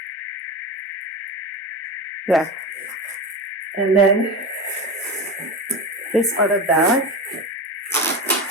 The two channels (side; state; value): both; normal; correlation 0.25